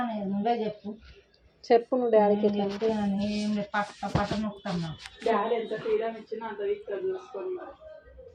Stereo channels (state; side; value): identical; both; correlation 1.00